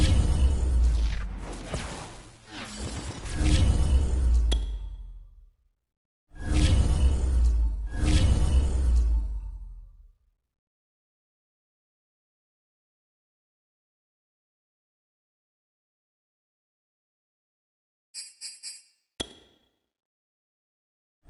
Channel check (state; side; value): identical; both; correlation 1.00